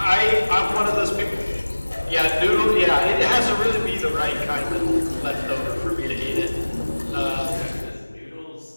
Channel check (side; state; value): both; inverted; correlation -1.00